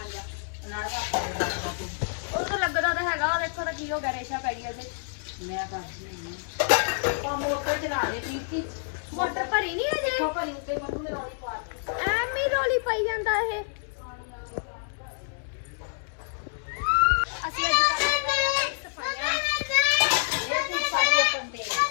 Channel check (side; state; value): right; silent; digital silence